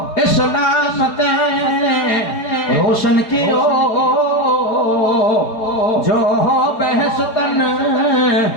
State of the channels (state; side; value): late; right; 4.8 ms